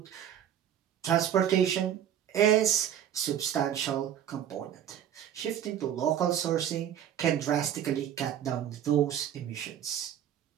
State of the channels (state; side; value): quieter; left; 10.0 dB